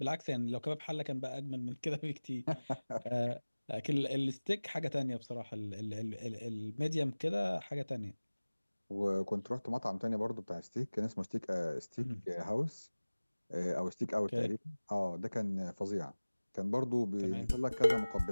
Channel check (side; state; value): both; inverted; correlation -1.00